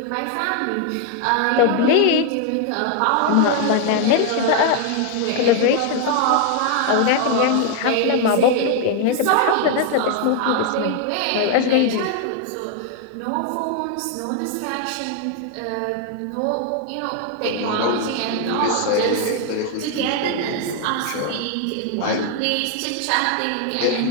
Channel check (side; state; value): both; different; correlation 0.00